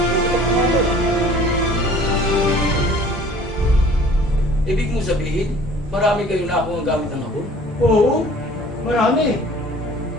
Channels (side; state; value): both; normal; correlation 0.49